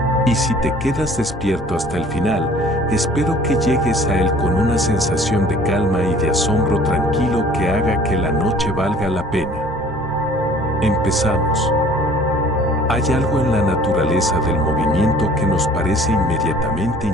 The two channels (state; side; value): normal; both; correlation 0.51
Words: Y si te quedas despierto hasta el final, espero que llegues a él con una sensación de calma y de asombro tranquilo que haga que la noche valga la pena. Empezamos. Hay algo en la naturaleza del movimiento que nos parece inmediatamente